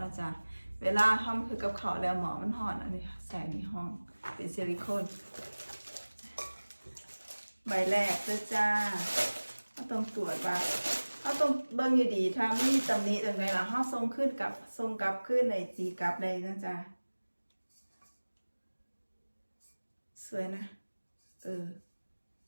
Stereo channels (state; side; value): inverted; both; correlation -1.00